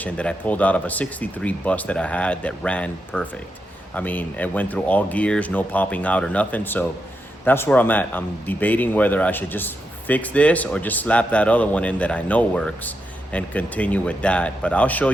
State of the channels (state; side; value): normal; both; correlation 0.85